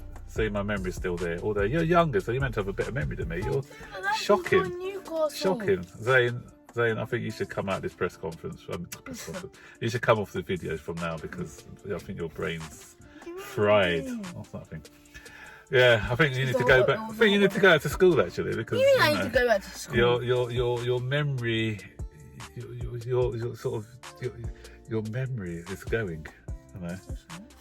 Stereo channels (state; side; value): identical; both; correlation 1.00